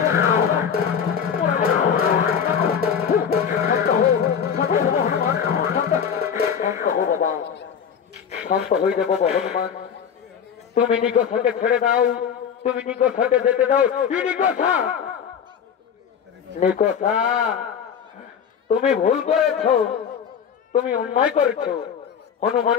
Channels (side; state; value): right; quieter; 7.6 dB